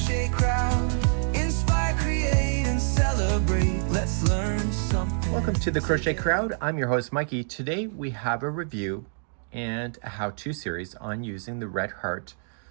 crowd. Inspire, create, and celebrate. Let's learn something. Welcome to the Crochet Crowd. I'm your host, Mikey. Today we have a review and a how-to series on using the Red Heart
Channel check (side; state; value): left; silent; digital silence